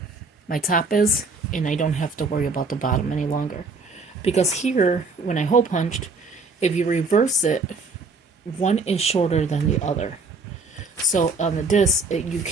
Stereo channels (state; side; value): quieter; left; 3.9 dB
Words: my top is. And I don't have to worry about the bottom any longer. Because here, when I hole punched, if you reverse it, one is shorter than the other. So on the disc, you